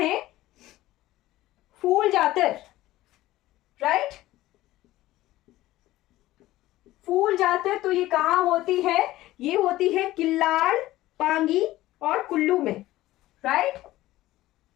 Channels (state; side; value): quieter; right; 16.2 dB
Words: फूल जातर। राइट, फूल जातर तो ये कहां होती है? ये होती है किल्लाड़, पांगी और कुल्लू में। राइट,